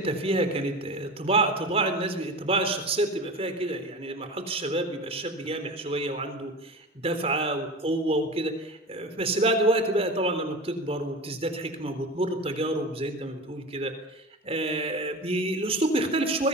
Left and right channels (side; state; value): both; normal; correlation 0.30